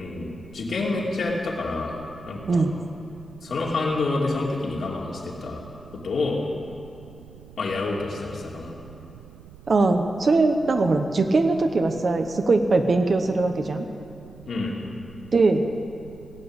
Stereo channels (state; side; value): noise; right; rumble, 21 dB below the sound